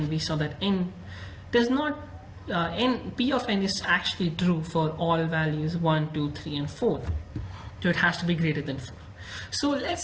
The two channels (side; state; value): both; identical; correlation 1.00